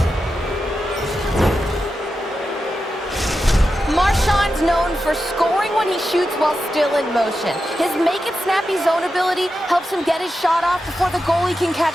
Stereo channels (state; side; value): normal; both; correlation 0.90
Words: Marchand's known for scoring when he shoots while still in motion. His make-it-snappy zone ability helps him get his shot off before the goalie can